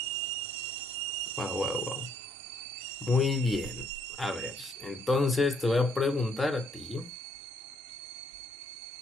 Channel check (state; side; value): normal; both; correlation 0.68